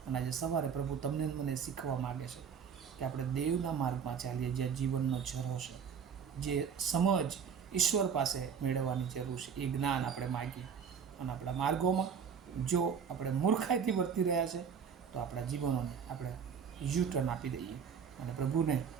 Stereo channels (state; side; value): quieter; left; 6.9 dB